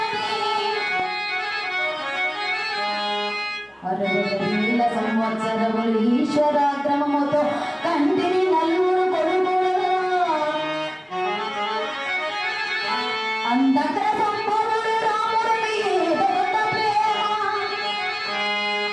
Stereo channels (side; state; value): both; identical; correlation 1.00